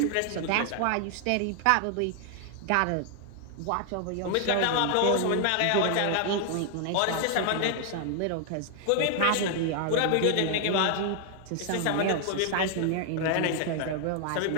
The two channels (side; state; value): both; different; correlation 0.00